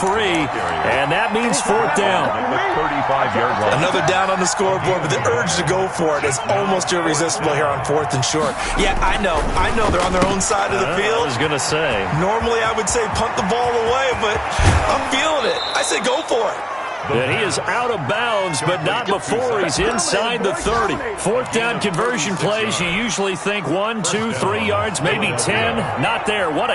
And that means 4th down. 35-yard line. Another down on the scoreboard, but the urge to go for it is almost irresistible here on 4th and short. Yeah, I know they're on their own side of the field. I was going to say. Normally I would say punt the ball away, but I'm feeling it. I say go for it. And he is out of bounds, but not before he's inside the 30. 4th down conversion plays, you usually think 1, 2, 3 yards, maybe 10. Not there. What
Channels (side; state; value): both; identical; correlation 1.00